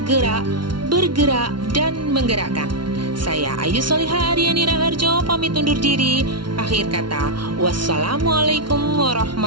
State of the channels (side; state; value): left; late; 0.72 ms